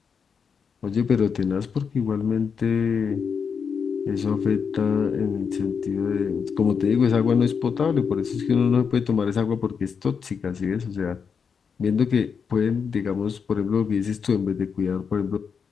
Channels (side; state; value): right; quieter; 6.2 dB